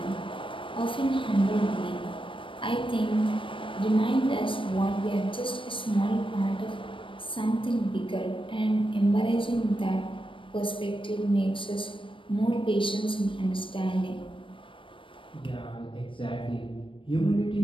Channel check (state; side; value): late; right; 0.25 ms